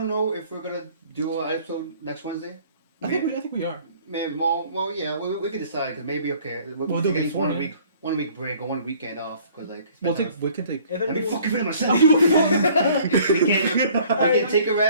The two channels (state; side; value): inverted; both; correlation -0.55